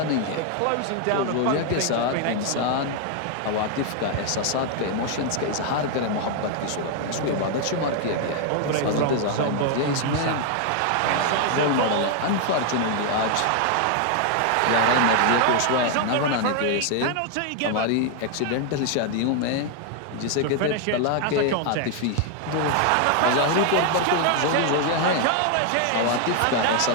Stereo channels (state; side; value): different; both; correlation 0.00